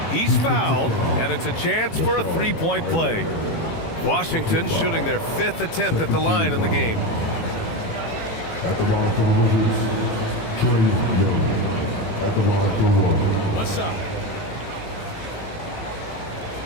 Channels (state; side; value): late; right; 18 ms